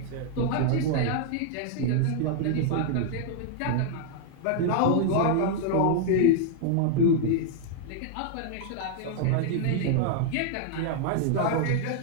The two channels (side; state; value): both; different; correlation 0.00